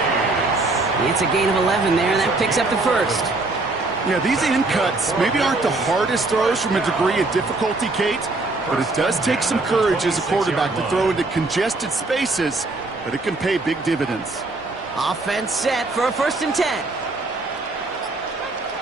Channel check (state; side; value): quieter; left; 3.2 dB